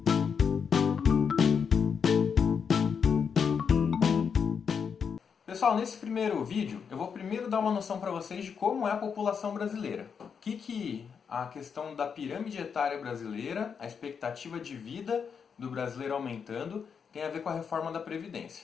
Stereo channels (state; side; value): quieter; right; 6.6 dB